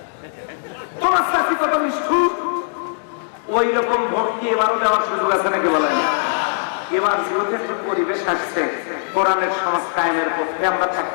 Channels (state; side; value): silent; right; digital silence